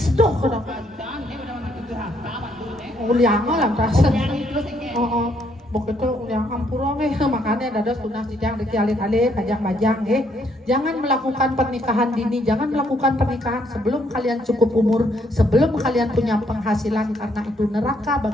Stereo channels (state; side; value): normal; both; correlation 0.70